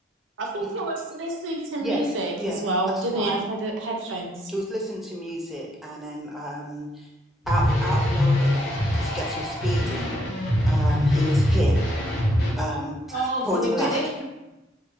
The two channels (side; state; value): both; normal; correlation 0.69